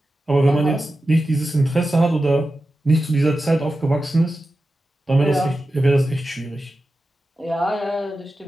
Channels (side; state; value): both; normal; correlation 0.92